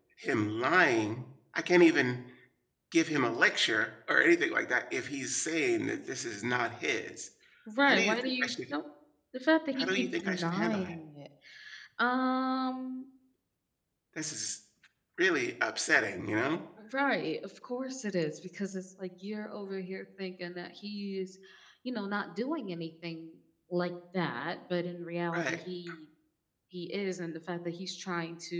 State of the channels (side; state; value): both; identical; correlation 1.00